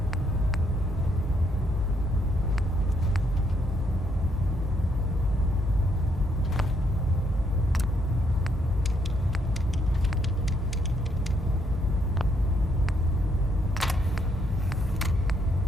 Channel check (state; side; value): normal; both; correlation 0.73